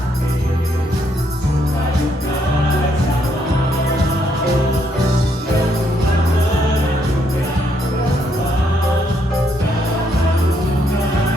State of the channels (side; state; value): both; normal; correlation 0.73